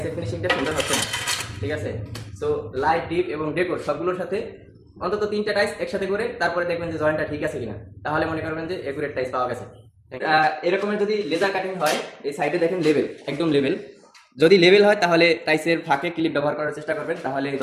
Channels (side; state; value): both; identical; correlation 1.00